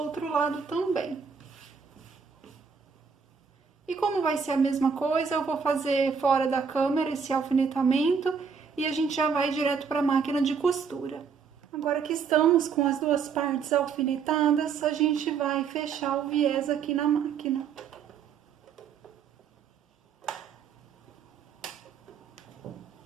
lado também. E como vai ser a mesma coisa, eu vou fazer fora da câmera esse alfinetamento e a gente já vai direto para a máquina de costura. Agora que estamos com as duas partes alfinetadas, a gente vai fechar o viés aqui na máquina.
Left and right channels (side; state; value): left; quieter; 6.2 dB